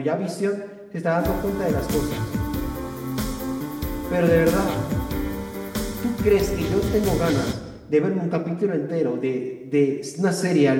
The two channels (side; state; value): both; identical; correlation 1.00